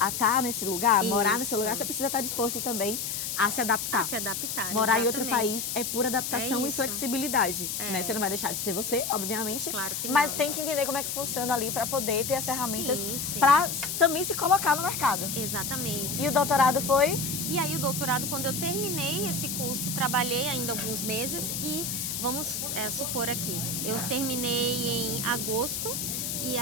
estar nesse lugar, morar nesse Isso. lugar, você precisa estar disposto também a se adaptar. a se adaptar. Morar em outro exatamente. país é pura adaptação É e isso. flexibilidade, né? Você não vai deixar de ser você, obviamente, Claro que mas não. tem que entender como é que funciona ali para poder ter as ferramentas Sim. para também se colocar no mercado. Exatamente. E o doutorado foi? E aí o doutorado, quando eu terminei esse curso, trabalhei ainda alguns meses e vamos supor aqui, eu terminei em agosto e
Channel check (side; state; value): left; noise; hiss, 3 dB below the sound